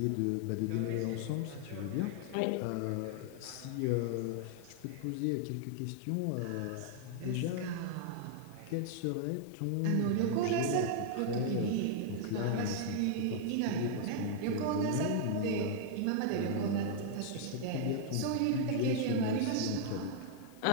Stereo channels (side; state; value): both; different; correlation 0.00